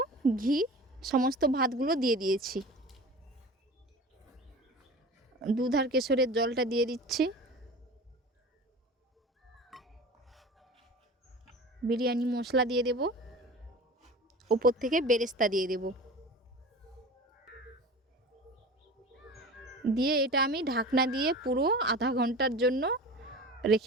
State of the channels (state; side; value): normal; both; correlation 0.36